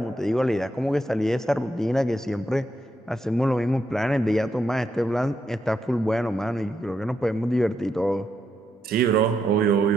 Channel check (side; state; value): both; normal; correlation 0.81